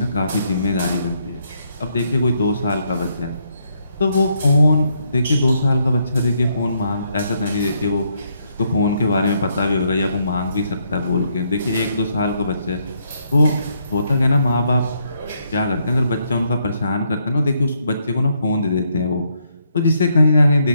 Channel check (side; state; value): both; inverted; correlation -0.75